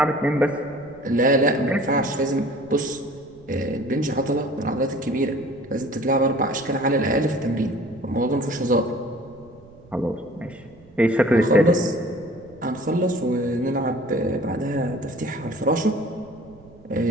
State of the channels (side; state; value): right; noise; rumble, 24 dB below the sound